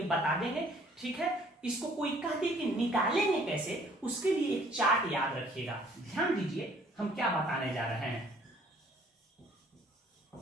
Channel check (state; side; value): normal; both; correlation 0.58